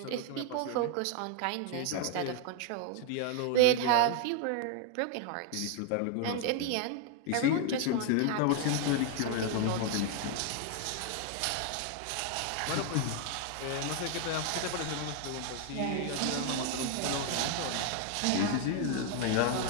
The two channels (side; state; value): both; different; correlation 0.00